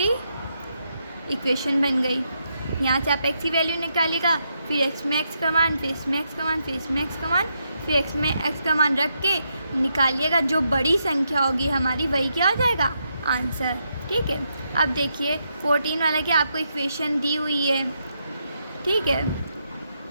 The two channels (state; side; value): inverted; both; correlation -0.80